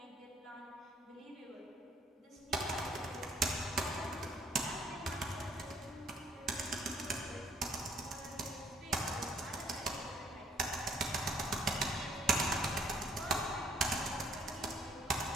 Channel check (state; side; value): normal; both; correlation 0.61